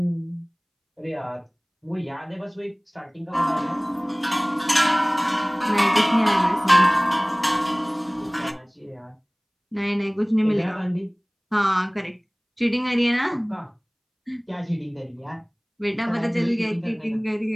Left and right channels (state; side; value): identical; both; correlation 1.00